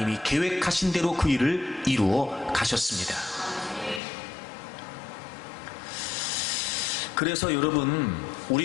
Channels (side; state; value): right; drops out; at 4.0 s